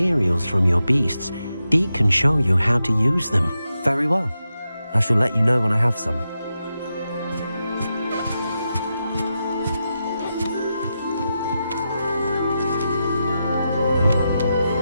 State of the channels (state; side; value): inverted; both; correlation -0.88